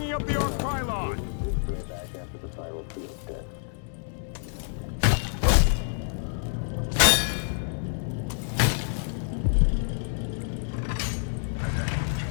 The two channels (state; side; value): silent; right; digital silence